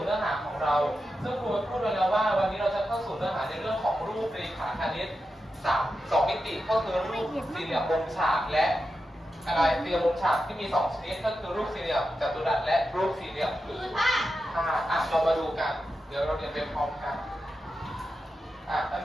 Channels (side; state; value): both; normal; correlation 0.89